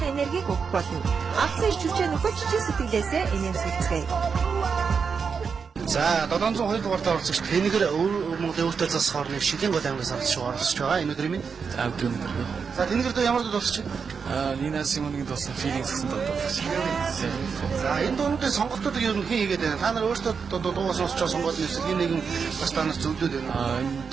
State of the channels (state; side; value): quieter; left; 5.8 dB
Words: энергийг өгөх болно. Алдсан ирч хүчээ нөхөж чин сэтгэлээсээ энерги. За 702 дугаарт оролцогч Тэнгэр Монголын өөртөө засах орны Шилийн гол аймгаас оролцож байгаа. Энэ өдрийн минь. За өдрийн мэдрэг. За Тэнгэр дөө ямар дуу сонсч байна? Нина Симоныгийн дуусан Feelings гэсэн дуу дуулж байна. За энэ дуунуудын сонголтуудыг ер нь хэн хийгээд байна? Та нар өөртөө дуугаа сонсчоо сонгоод нэсэл хин нэгэн бас та нар зөвлөд байна. Энэ